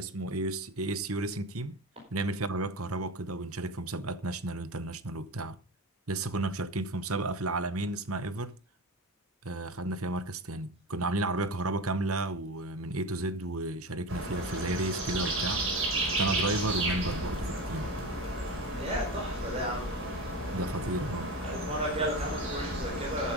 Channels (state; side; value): normal; both; correlation 0.26